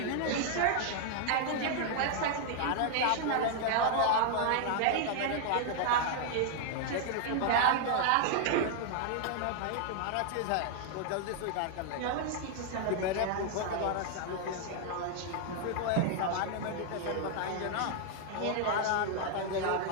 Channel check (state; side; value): different; both; correlation 0.00